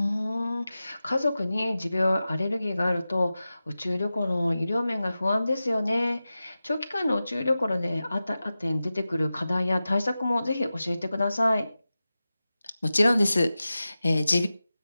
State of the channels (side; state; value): both; inverted; correlation -0.94